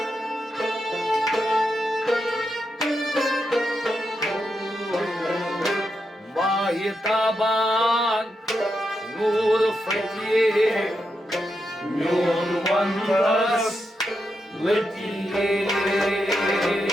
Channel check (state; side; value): normal; both; correlation 0.85